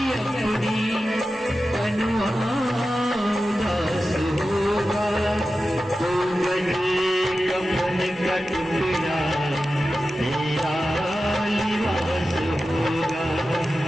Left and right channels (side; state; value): both; normal; correlation 0.93